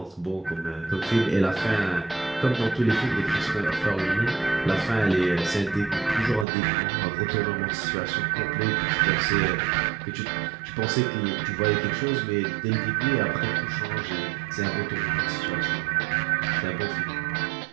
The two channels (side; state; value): left; drops out; at 6.5 s